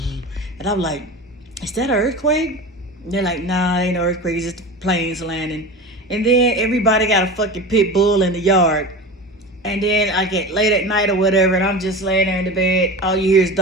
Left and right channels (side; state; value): both; normal; correlation 0.29